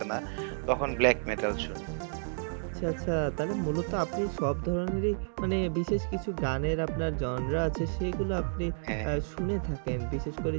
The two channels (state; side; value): silent; left; 57 dB below the other